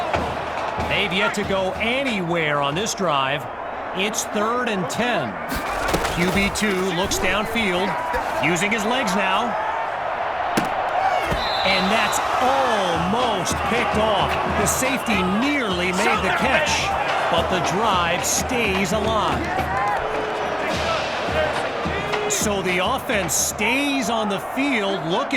They've yet to go anywhere on this drive. It's 3rd and 10. QB2 looks downfield, using his legs now. And that's almost picked off. The safety nearly made the catch, but the drive stays alive. So the offense stays on the field,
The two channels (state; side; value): identical; both; correlation 1.00